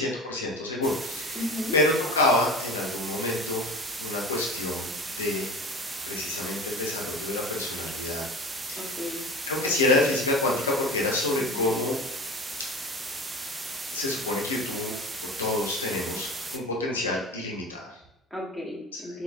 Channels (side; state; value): both; normal; correlation 0.35